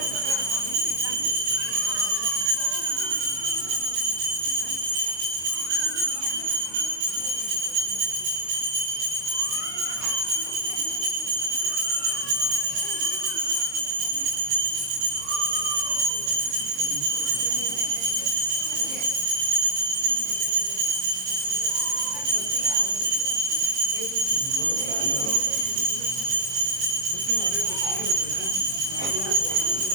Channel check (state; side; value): late; left; 22 ms